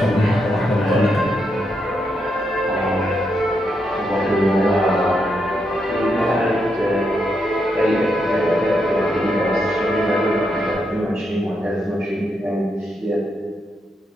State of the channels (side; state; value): both; normal; correlation 0.81